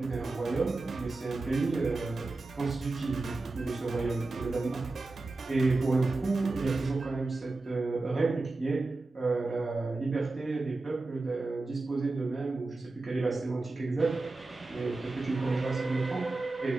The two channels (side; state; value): left; quieter; 3.3 dB